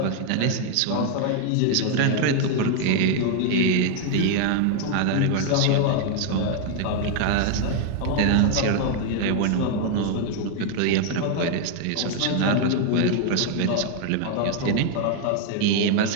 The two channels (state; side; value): different; both; correlation 0.00